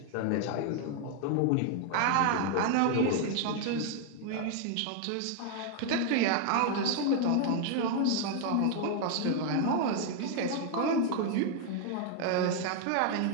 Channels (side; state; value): both; different; correlation 0.00